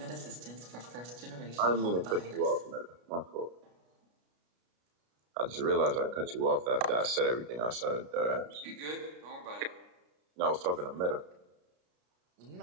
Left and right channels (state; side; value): late; left; 33 ms